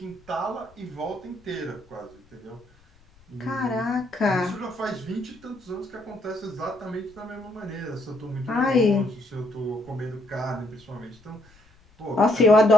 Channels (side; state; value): left; noise; rumble, 29 dB below the sound